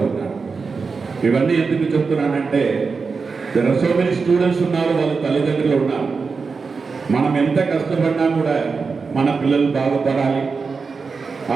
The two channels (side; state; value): left; quieter; 4.8 dB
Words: ఉన్నాను. ఇవన్నీ ఎందుకు చెప్తున్నానంటే there are so many students ఉన్నారు, వాళ్ళ తల్లిదండ్రులు ఉన్నారు. మనం ఎంత కష్టపడినా కూడా మన పిల్లలు బాగుపడాలి,